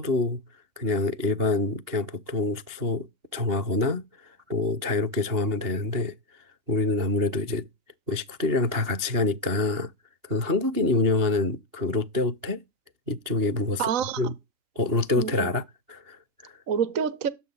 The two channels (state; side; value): late; left; 2.9 ms